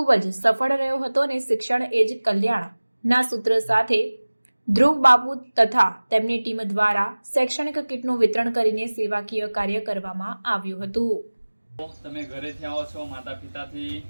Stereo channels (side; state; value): both; inverted; correlation -1.00